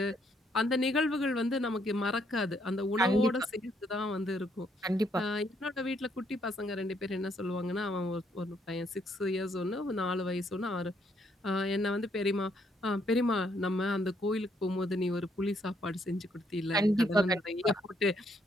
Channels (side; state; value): both; normal; correlation 0.71